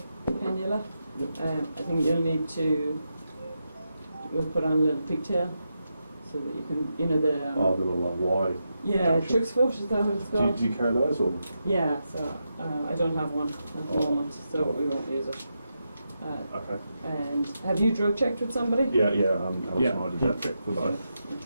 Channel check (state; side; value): inverted; both; correlation -0.86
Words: cannula. Yep. I think you'll need to, we'll put on a little pigtail so that you can, the Oh, the little wide. yeah, Chuck's foot, is that what it's Do called? you carry those or? Yeah, so I don't have one at the moment, so we won't use it. Okay. And have you drug checked with somebody? Yeah. Alex Yeah. and I did that for both.